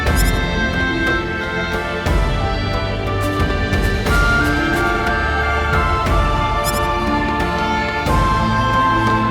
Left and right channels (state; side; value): identical; both; correlation 1.00